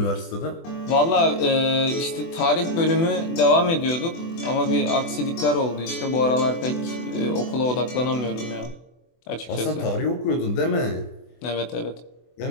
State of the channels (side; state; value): right; late; 24 ms